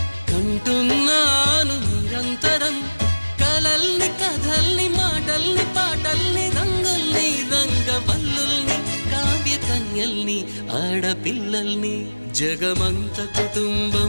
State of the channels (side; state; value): both; inverted; correlation -1.00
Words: కంటున్నాను నిరంతరం కలల్ని కథల్ని మాటల్ని పాటల్ని రంగుల్ని రంగవల్లుల్ని కావ్య కన్యల్ని ఆడపిల్లల్ని జగమంత